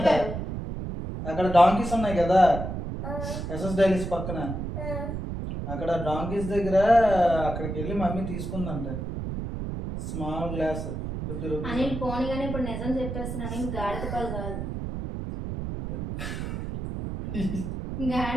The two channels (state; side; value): noise; right; rumble, 5 dB below the sound